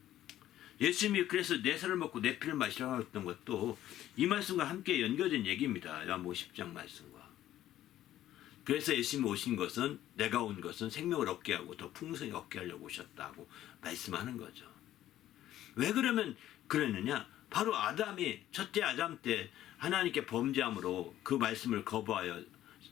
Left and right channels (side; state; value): right; quieter; 13.0 dB